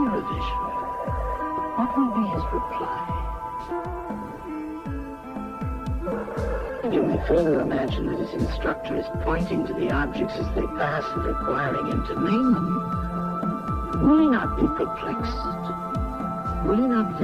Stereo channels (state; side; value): identical; both; correlation 1.00